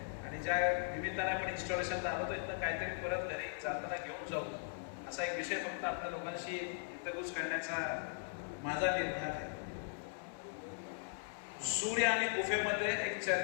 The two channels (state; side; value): silent; right; 52 dB below the other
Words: आणि ज्या निमित्ताने आपण इन्स्टॉलेशनला आलो इथं काहीतरी परत घरी जाताना घेऊन जाऊ असा एक विषय फक्त आपल्या लोकांशी इंटरव्ह्यूज करण्याचा माझा निर्धार आहे. सूर्य आणि गुफेमध्ये एक